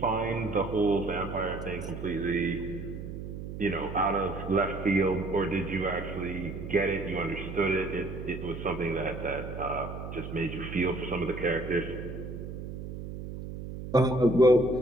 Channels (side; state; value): right; noise; hum, 8 dB below the sound